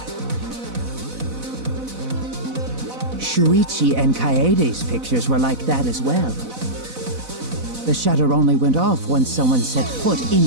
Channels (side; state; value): left; late; 4.0 ms